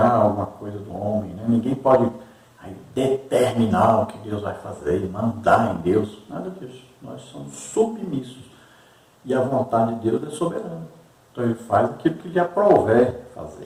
alguma coisa do homem. Né? Ninguém pode aí determinar o que Deus vai fazer, mandar em Deus, nada disso. Nós somos submissos. E a vontade de Deus é soberana. Então Ele faz aquilo que lhe aprouver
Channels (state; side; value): identical; both; correlation 1.00